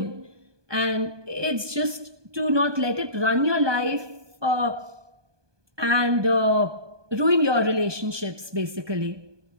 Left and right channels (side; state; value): left; late; 1.2 ms